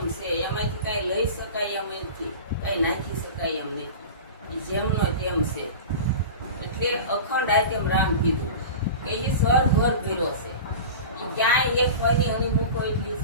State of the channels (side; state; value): both; inverted; correlation -0.33